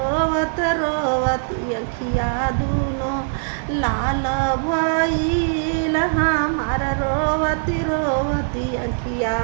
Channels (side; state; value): left; silent; digital silence